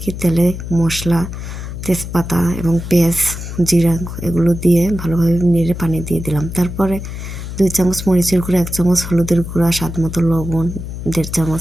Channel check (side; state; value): left; noise; hum, 8 dB below the sound